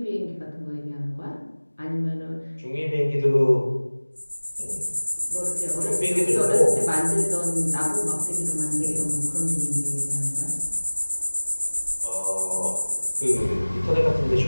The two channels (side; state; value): both; inverted; correlation -1.00